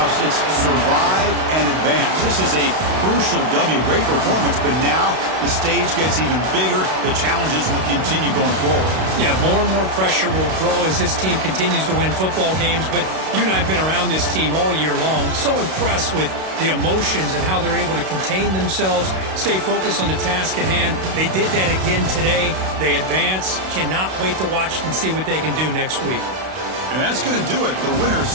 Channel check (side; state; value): left; late; 32 ms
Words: it's survive and advance. This is a crucial W. Great performance, but now the stage gets even bigger. The challenges will continue going forward. Yeah, more and more pressure will grow as this team continues to win football games. But you and I have been around this team all year long. So impressed with the emotions and how they're able to contain themselves, stay focused on the task at hand. They did that again today. They advance. Cannot wait to watch and see what they can do next week. And that's going to do it. The winner